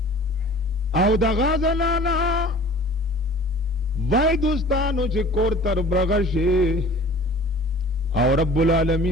او دا غازنانا وای دوستانو چې کور تر برغشے او رب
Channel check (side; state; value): both; normal; correlation 0.45